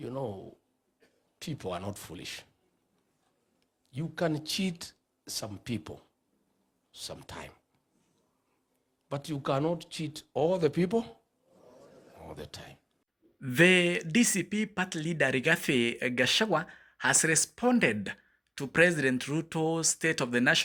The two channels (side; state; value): both; identical; correlation 1.00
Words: know, people are not foolish. You can cheat some people sometime, but you cannot cheat all the people all the time. The DCP party leader Rigathi Gachagua has responded to President Ruto's State of the